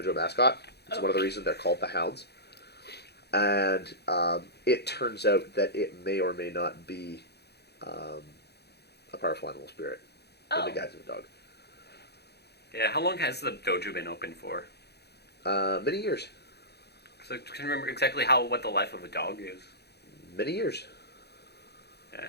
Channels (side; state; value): right; late; 0.48 ms